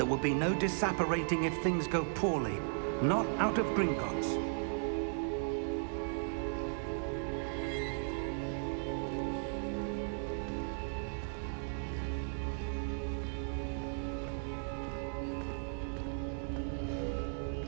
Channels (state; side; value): silent; left; digital silence